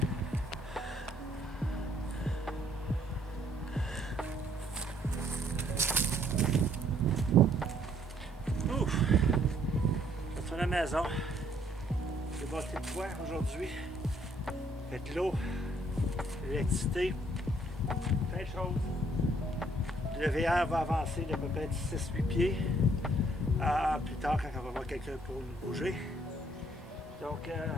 maison. J'ai bâti le toit aujourd'hui. Fait de l'eau, l'électricité, plein de choses. Le VR va avancer de peut-être 6-8 pieds. Plus tard, quand on va voir quelqu'un pour nous bouger. Donc,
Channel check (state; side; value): normal; both; correlation 0.64